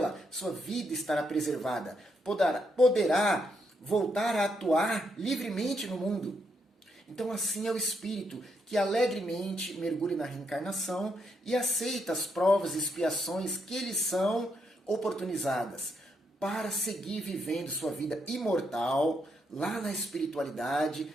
sua vida estará preservada. Poderá voltar a atuar livremente no mundo. Então assim é o espírito que alegremente mergulha na reencarnação e aceita as provas e expiações que lhe são oportunizadas para seguir vivendo sua vida imortal lá na espiritualidade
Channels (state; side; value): normal; both; correlation 0.78